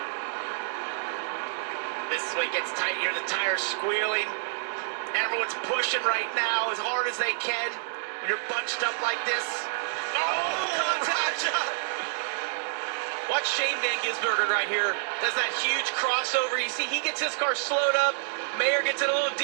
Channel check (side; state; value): left; silent; digital silence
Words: This is when it gets tight here, the tires squealing. Everyone's pushing right now as hard as they can when you're bunched up like this. Oh, contact! Watch Shane Van Gisbergen right here. Does that huge crossover. You see, he gets his car slowed up. Mayer gets it a little